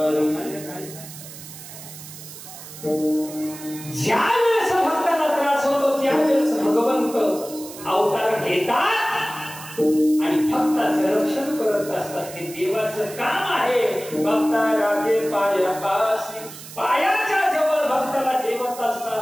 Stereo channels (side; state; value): right; noise; hiss, 14 dB below the sound